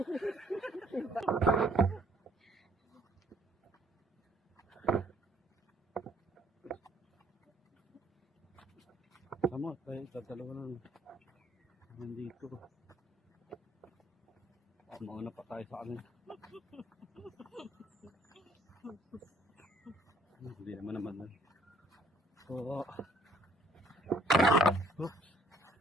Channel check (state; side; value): normal; both; correlation 0.62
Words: Tama, tayo dalawa lang. Nandito. Mauna pa tayo sa akin. Hindi naman. So, oops.